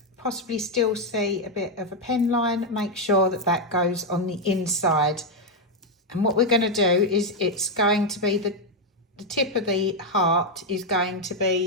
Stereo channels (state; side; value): normal; both; correlation 0.03